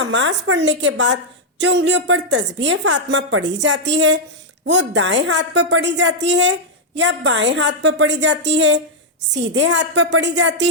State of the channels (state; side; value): normal; both; correlation -0.04